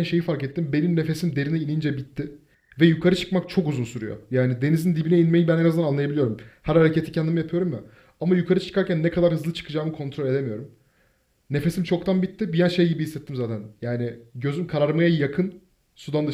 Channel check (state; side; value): identical; both; correlation 1.00